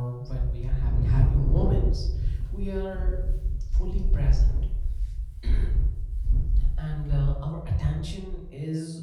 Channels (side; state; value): both; identical; correlation 1.00